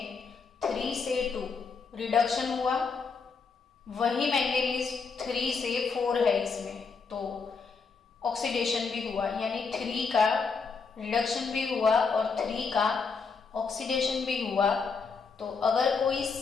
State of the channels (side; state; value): right; quieter; 5.1 dB